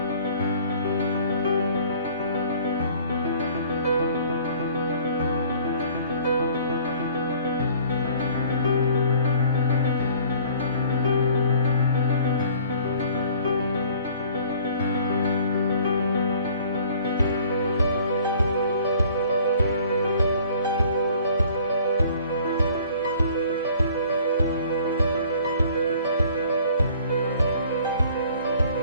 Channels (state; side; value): inverted; both; correlation -0.54